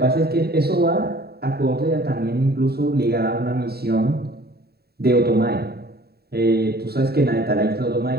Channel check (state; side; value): late; left; 0.46 ms